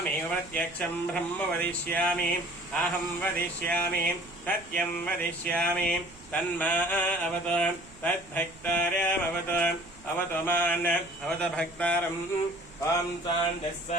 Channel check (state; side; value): noise; right; rumble, 23 dB below the sound